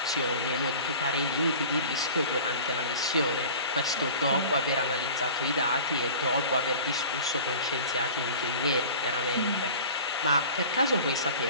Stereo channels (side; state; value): both; inverted; correlation -0.40